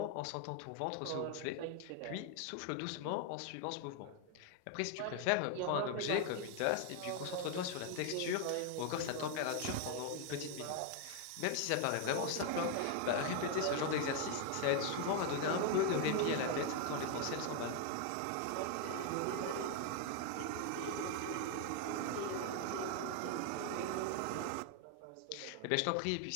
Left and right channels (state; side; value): different; both; correlation 0.01